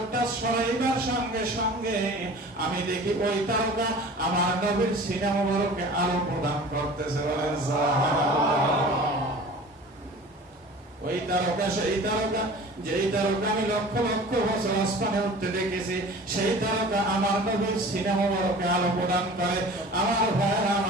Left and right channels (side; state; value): both; normal; correlation 0.42